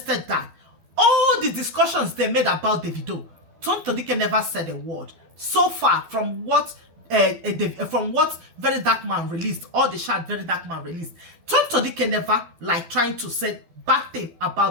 that. All the discussions they made about the video, Tonto Dikeh never said a word. So far, from what Very Dark Man released, all the chat Very Dark Man released, Tonto Dikeh never like trying to say bad thing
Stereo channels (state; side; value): late; left; 12 ms